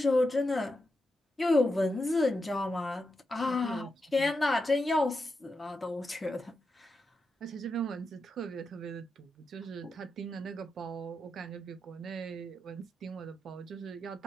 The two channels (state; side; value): normal; both; correlation 0.87